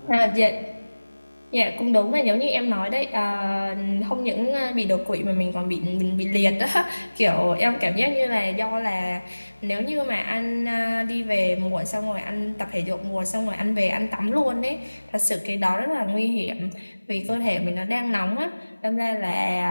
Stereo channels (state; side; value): inverted; both; correlation -1.00